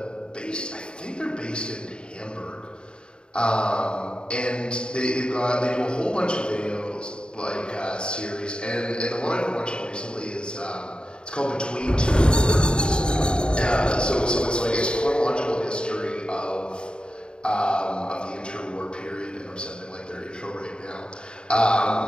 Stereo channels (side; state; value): right; late; 0.051 ms